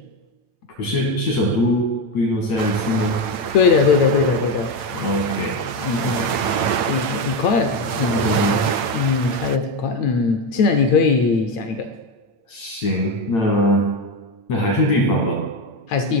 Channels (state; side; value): late; right; 8.9 ms